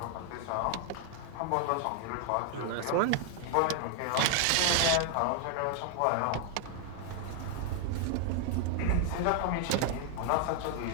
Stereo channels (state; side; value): different; both; correlation 0.00